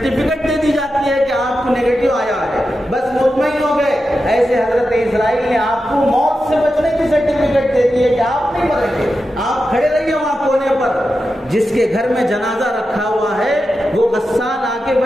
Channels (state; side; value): normal; both; correlation 0.90